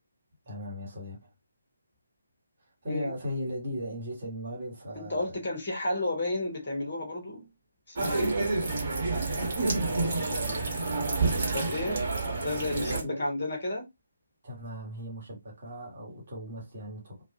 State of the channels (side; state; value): both; inverted; correlation -0.77